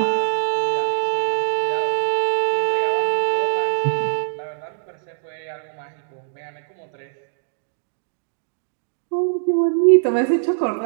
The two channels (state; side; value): silent; left; digital silence